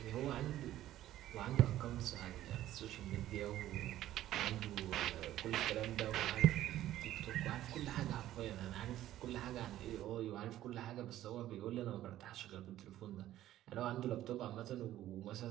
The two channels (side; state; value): left; quieter; 13.5 dB